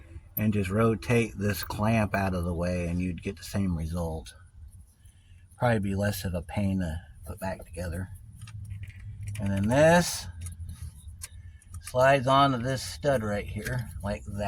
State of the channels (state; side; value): identical; both; correlation 1.00